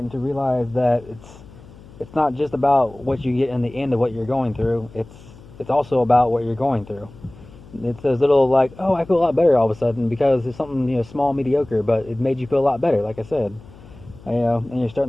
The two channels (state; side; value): noise; left; hum, 21 dB below the sound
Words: to realize that it's not just about what you get in the end of what you're going through. It's also about what you're going through. It's those little like, oh, I feel a lot better all of a sudden because it's something small, mediocre, but it made you feel a lot better. Like I said, and you're